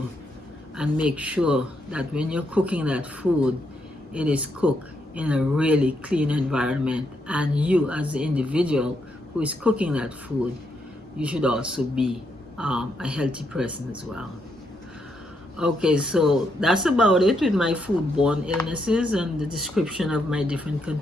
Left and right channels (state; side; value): normal; both; correlation 0.78